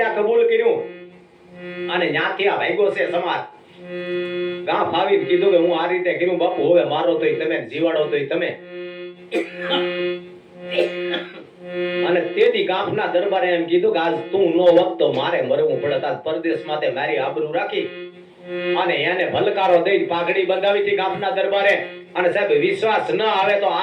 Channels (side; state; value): both; identical; correlation 1.00